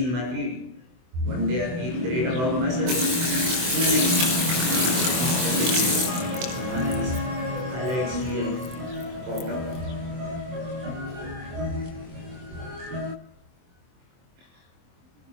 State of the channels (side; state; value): left; late; 24 ms